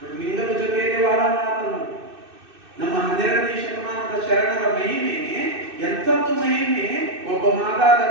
ಲಿಂಗದ ಜೊತೆಯಲ್ಲಿ ವಾದ ಮಾಡತನು. ನಮ್ಮ 12ನೇ ಶತಮಾನದ ಶರಣರ ಮಹಿಮೆ ಎಂಥದ್ದು ಮಹಿಮೆ! ಒಬ್ಬ ಮಾದಾದ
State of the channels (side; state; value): left; late; 2.6 ms